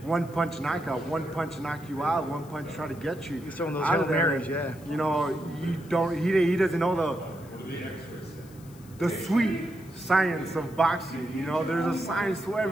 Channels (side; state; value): left; noise; hiss, 24 dB below the sound